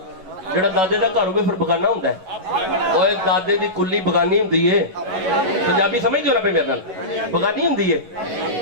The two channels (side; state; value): left; late; 11 ms